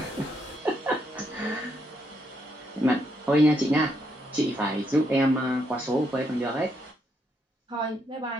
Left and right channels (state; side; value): normal; both; correlation 0.76